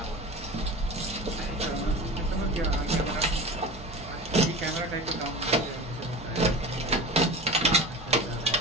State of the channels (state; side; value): normal; both; correlation 0.33